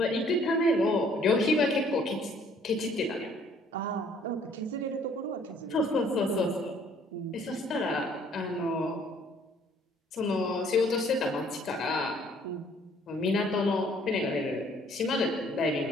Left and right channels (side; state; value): both; normal; correlation 0.60